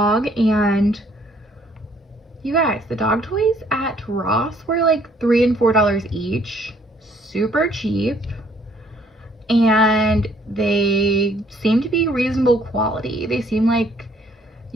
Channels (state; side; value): normal; both; correlation 0.63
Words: and you guys, the dog toys at Ross were like $3 and $4 each, super cheap, and they seem to be reasonable quality. They seem like